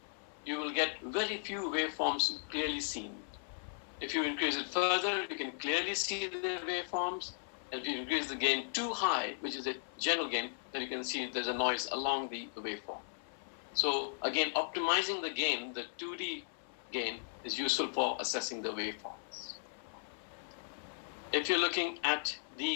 you will get very few waveforms clearly seen. If you increase it further, you can clearly see the waveforms. And if you increase the gain too high, which is a general gain, then you can see there's a noise along the waveform. So again, optimizing the gain, the 2D gain, is useful for assessing the waveforms. if you're looking at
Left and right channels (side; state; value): right; silent; 53 dB below the other